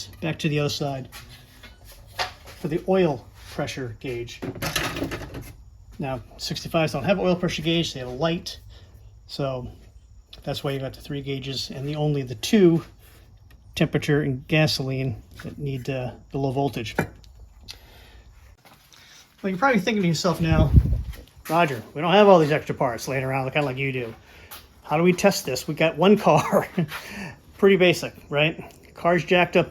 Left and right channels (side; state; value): both; identical; correlation 1.00